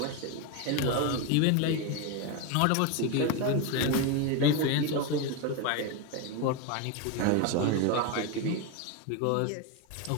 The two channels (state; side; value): different; both; correlation 0.02